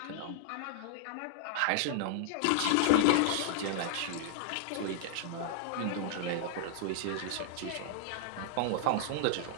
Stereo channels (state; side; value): different; both; correlation -0.01